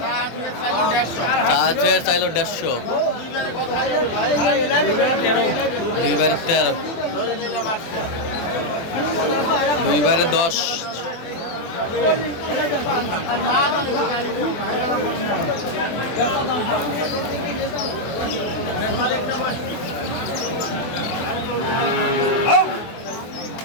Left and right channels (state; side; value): late; right; 24 ms